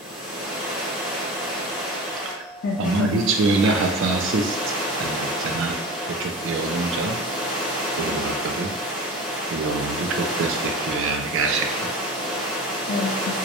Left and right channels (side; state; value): both; normal; correlation 0.33